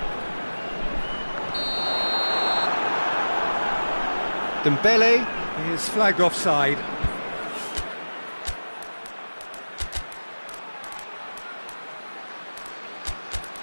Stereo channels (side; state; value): both; inverted; correlation -1.00